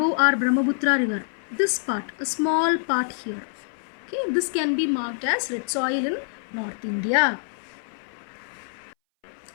our Brahmaputra river, this part, a small part here, okay, this can be marked as red soil in North India.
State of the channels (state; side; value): silent; right; 60 dB below the other